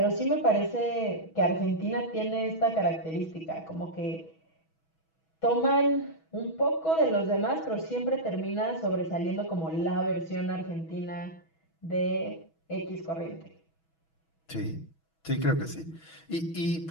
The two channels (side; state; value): right; late; 6.2 ms